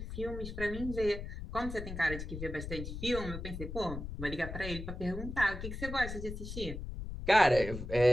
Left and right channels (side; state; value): left; noise; rumble, 7 dB below the sound